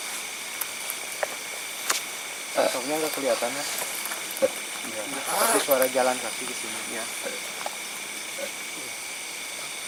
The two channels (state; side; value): identical; both; correlation 1.00